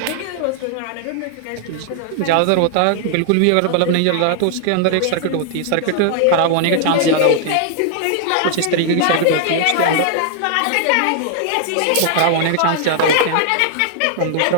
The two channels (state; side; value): different; both; correlation 0.00